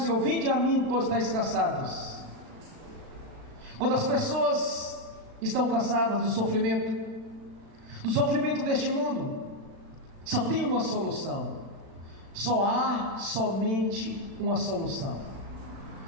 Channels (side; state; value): left; late; 36 ms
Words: vinde a mim, todos estáis cansados. Quando as pessoas estão cansadas do sofrimento deste mundo, só tem uma solução. Só há somente uma solução.